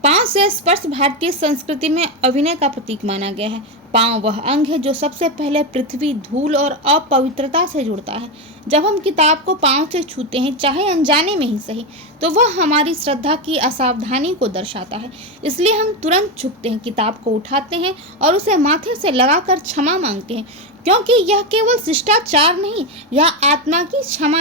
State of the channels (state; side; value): normal; both; correlation 0.11